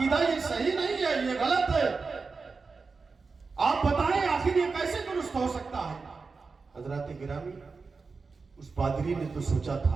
یہ صحیح نہیں ہے, یہ غلط ہے. آپ بتائیں آخر یہ کیسے درست ہو سکتا ہے؟ حضرات گرامی, اس پادری نے تو سوچا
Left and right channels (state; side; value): quieter; left; 4.5 dB